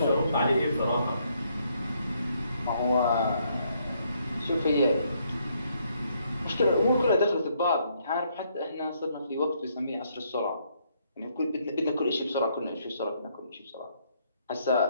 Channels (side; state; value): both; inverted; correlation -0.71